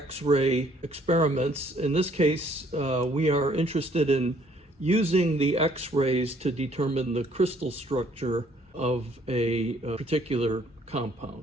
experiments. In this case, we are interested in using the X-rays to determine the crystal structure of a particular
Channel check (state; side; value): normal; both; correlation 0.62